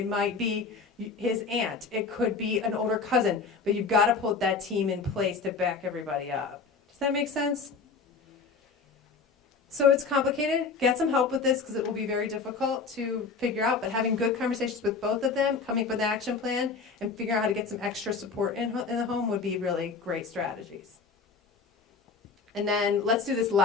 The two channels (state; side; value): quieter; right; 4.8 dB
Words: might be his aunt. It could be an older cousin. But you've got to put that team in place to back everybody up. Does that make sense? So it's complicated. Get some help with this because it will be very difficult to figure out. But having good conversations with both of them, coming up with an action plan, and figuring out how to get some extra support in the home would be really great strategies. And then let's do this